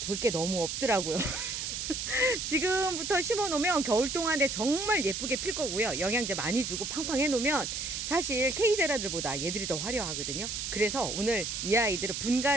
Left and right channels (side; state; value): right; noise; hiss, 4 dB below the sound